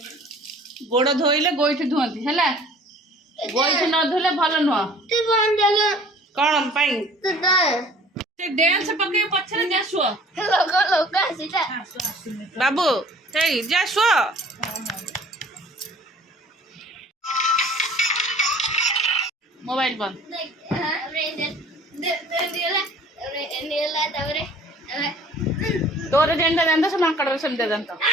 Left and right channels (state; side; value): normal; both; correlation 0.51